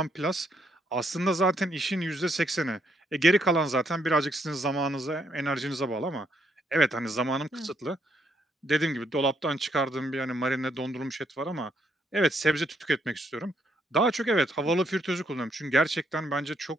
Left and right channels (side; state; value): both; normal; correlation 0.74